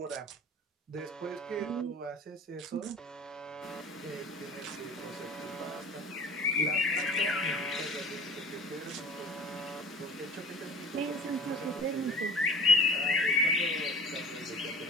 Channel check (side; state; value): both; normal; correlation 0.41